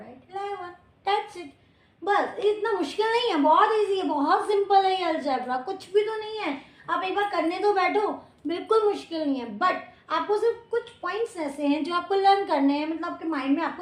11. That's it. बस इतना मुश्किल नहीं है, बहुत इजी है, बहुत सिंपल है ये अलजेब्रा, कुछ भी तो नहीं है। आप एक बार करने तो बैठो, बिल्कुल मुश्किल नहीं है। बट आपको सिर्फ कुछ पॉइंट्स ऐसे हैं जो आपको लर्न करने हैं, मतलब आपके माइंड में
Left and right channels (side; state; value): both; identical; correlation 1.00